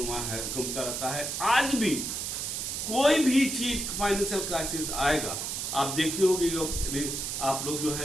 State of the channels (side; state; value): right; noise; hiss, 3 dB below the sound